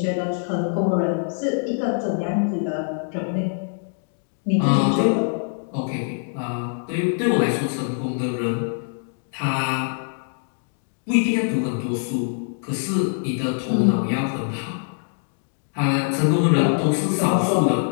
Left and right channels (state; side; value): silent; right; digital silence